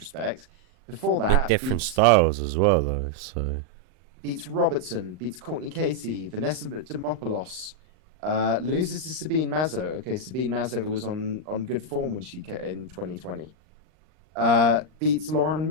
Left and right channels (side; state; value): left; late; 39 ms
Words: Before that, with different styles as well, though. So beats Robertson, beats Courtney Casey, Vanessa Demopoulos, loses to Sabine Mazo. Okay, Sabine Mazo was on good form when she came in 2020. Beats Lauren